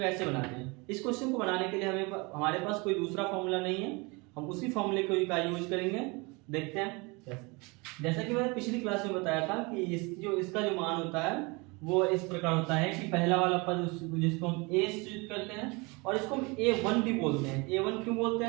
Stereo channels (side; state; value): left; quieter; 27.5 dB